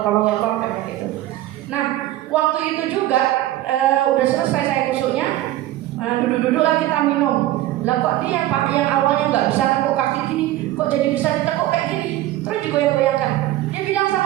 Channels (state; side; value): quieter; left; 14.9 dB